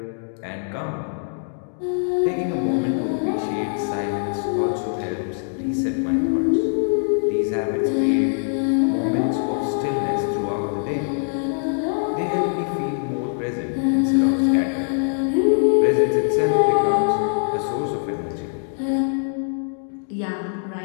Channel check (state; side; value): silent; right; digital silence